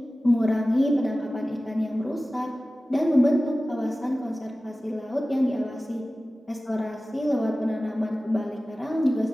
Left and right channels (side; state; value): both; normal; correlation 0.96